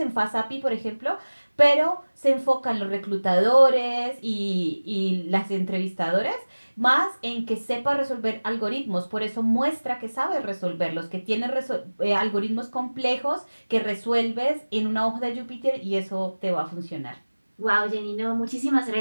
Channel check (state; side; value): inverted; both; correlation -1.00